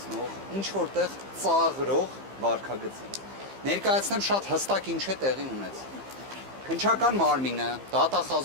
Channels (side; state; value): left; late; 15 ms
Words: ինչ-որտեղ ծաղրող վարքագծին։ Ներկայացնեմ շատ հստակ ինչ է տեղի ունեցել։ Քննչական մարմինը,